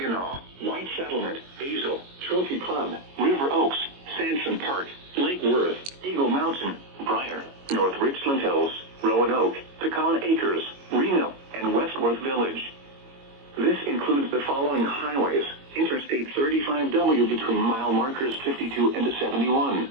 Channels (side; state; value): left; late; 22 ms